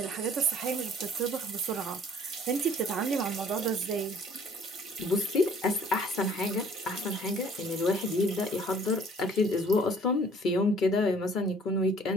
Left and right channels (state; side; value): normal; both; correlation 0.56